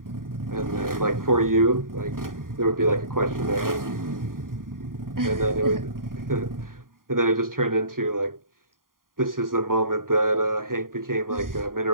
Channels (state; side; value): late; left; 0.91 ms